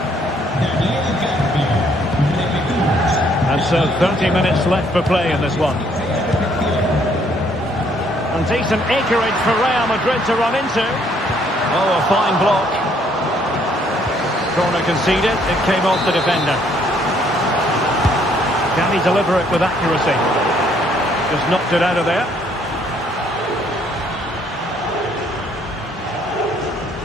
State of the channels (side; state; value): both; normal; correlation 0.66